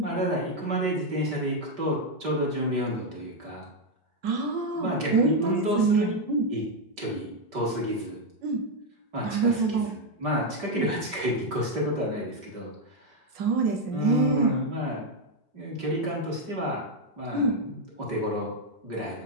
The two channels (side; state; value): left; late; 5.1 ms